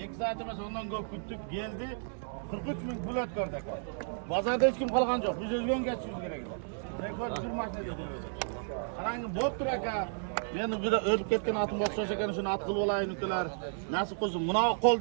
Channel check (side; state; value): left; silent; digital silence